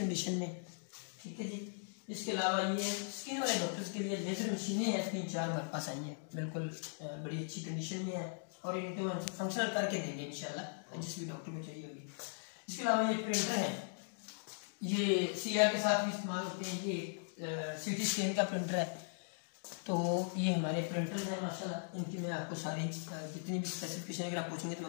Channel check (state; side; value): silent; right; digital silence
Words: में, ठीक है जी। इसके अलावा ये स्किन वाले डॉक्टर्स के लिए लेजर मशीनें हैं, 3-4 हमारे पास आई हैं, बिल्कुल बड़ी अच्छी कंडीशन में है और इनको हम फंक्शनल करके देंगे इंशाल्लाह, जिस भी डॉक्टर को चाहिए होगी। इसके अलावा ये प्रिंटर है, ये CR के साथ भी इस्तेमाल होते हैं। ये CT स्कैन का प्रिंटर है, तो ये हमारे प्रिंटर्स हैं माशाल्लाह। इनकी मैं आपको सारी जितनी भी स्पेसिफिकेशन अगर आप पूछेंगे तो